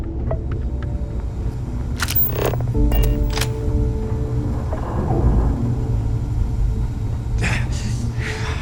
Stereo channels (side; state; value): both; identical; correlation 1.00